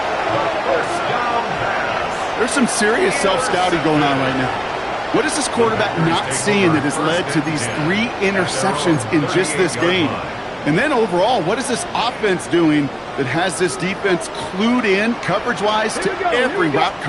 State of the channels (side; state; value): both; identical; correlation 1.00